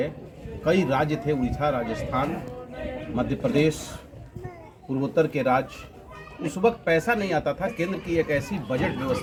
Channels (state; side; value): identical; both; correlation 1.00